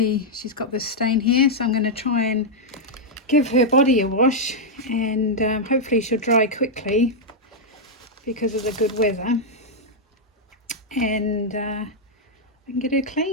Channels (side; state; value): both; normal; correlation -0.04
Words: she's got this stain here, so I'm going to try and give her body a wash, and hopefully she'll dry quickly because of the good weather, and I can get her